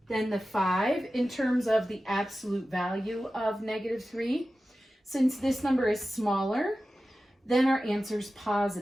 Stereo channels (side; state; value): both; normal; correlation 0.94